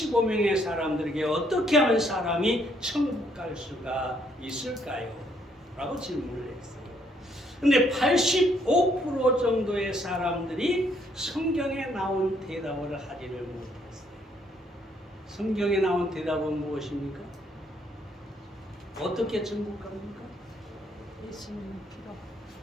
사람들에게 어떻게 하면 사람이 천국 갈 수가 있을까요? 라고 질문을 했어요. 근데 85% 정도의 사람들이 성경에 나온 대답을 하지를 못했어요. 성경에 나온 대답은 무엇입니까? 어떻게 천국 갑니까? 예수님 피로.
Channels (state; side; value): normal; both; correlation 0.69